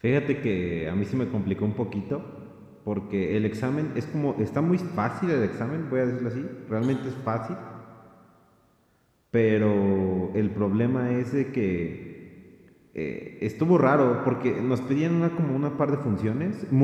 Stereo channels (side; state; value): both; identical; correlation 1.00